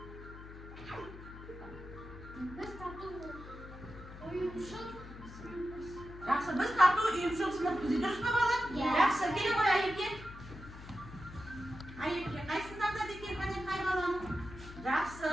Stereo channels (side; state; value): left; noise; hum, 14 dB below the sound